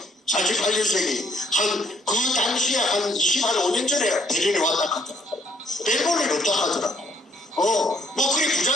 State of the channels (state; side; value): normal; both; correlation 0.66